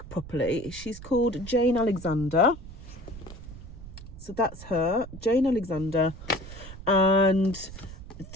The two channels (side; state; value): right; noise; rumble, 14 dB below the sound